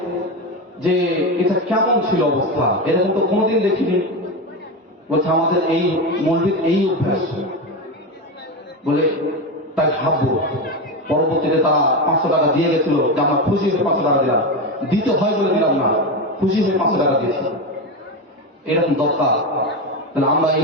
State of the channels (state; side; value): normal; both; correlation 0.16